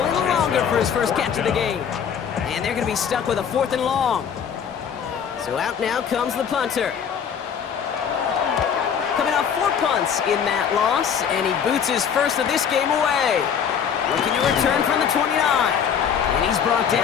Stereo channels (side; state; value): right; quieter; 7.7 dB